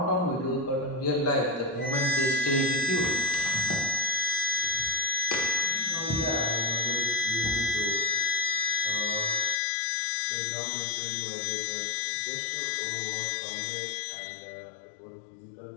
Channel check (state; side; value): drops out; right; at 9.6 s